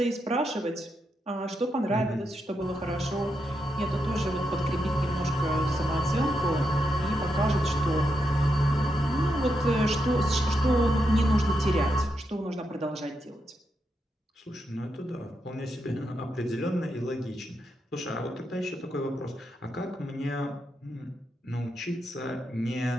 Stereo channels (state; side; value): normal; both; correlation 0.84